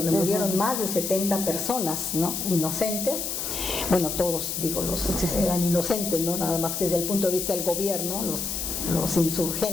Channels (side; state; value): left; noise; hiss, 3 dB below the sound